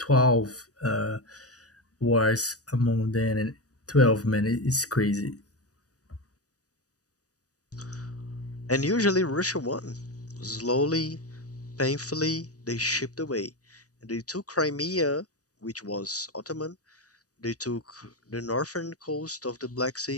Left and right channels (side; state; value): right; late; 0.67 ms